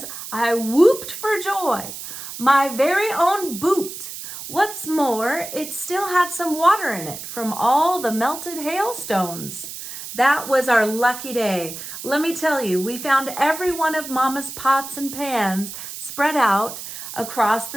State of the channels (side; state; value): right; noise; hiss, 10 dB below the sound